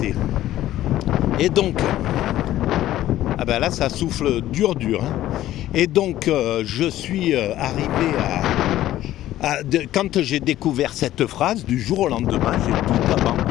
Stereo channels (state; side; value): quieter; right; 13.9 dB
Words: Et donc, là, ça souffle dur, hein. Et donc, je suis arrivé quand j'ai découvert cette phrase, du jour au lendemain, j'ai tout